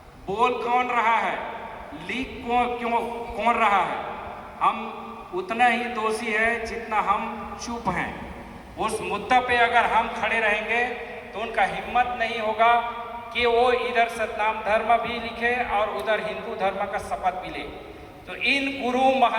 बोल कौन रहा है? लीक कौन रहा है? हम उतना ही दोषी है जितना हम चुप हैं। उस मुद्दा पे अगर हम खड़े रहेंगे तो उनका हिम्मत नहीं होगा कि वो इधर सतनाम धर्म भी लिखे और उधर हिंदू धर्म का शपथ भी ले। तो इन गुरु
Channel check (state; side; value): identical; both; correlation 1.00